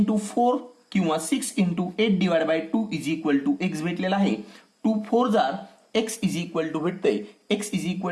4 किंवा 6 into 8 divided by 2 is equal to x भेटलेला आहे. 2 4 जार x इज इक्वल टू भेटतंय, x is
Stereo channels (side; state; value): both; identical; correlation 1.00